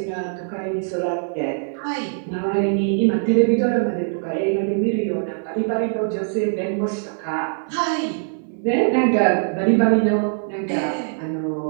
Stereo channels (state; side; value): silent; left; 64 dB below the other